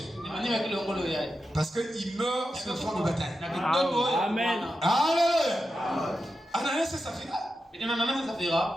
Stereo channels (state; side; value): normal; both; correlation 0.90